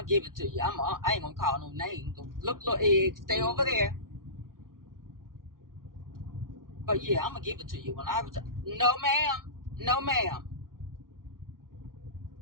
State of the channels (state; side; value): late; left; 0.91 ms